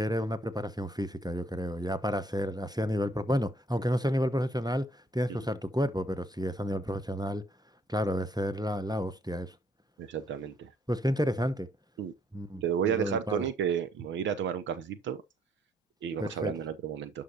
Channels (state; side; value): normal; both; correlation 0.68